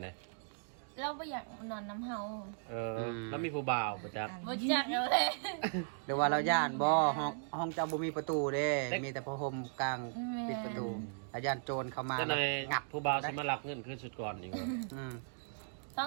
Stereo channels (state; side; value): silent; left; digital silence